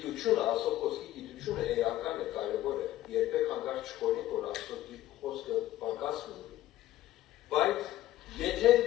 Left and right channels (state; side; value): quieter; right; 14.3 dB